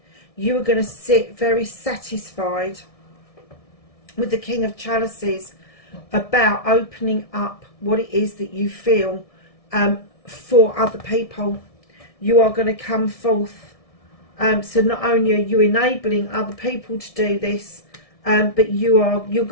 you are going to sit very satisfied with the King of Chalices about opening up what it is that you feel for other people. You are going to come forth. So not only are you enabling other people to do this, but you're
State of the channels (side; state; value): right; late; 1.6 ms